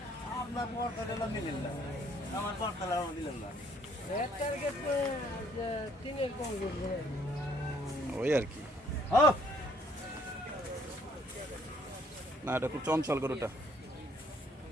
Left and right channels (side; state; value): both; normal; correlation 0.64